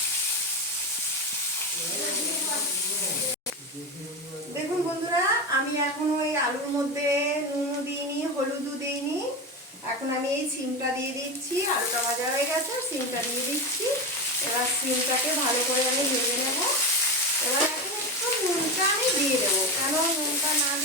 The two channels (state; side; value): normal; both; correlation 0.19